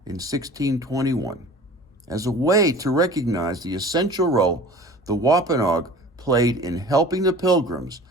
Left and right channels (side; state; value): both; normal; correlation 0.42